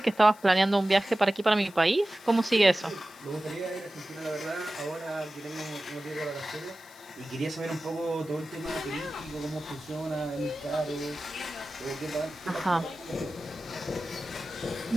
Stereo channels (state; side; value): noise; left; hiss, 23 dB below the sound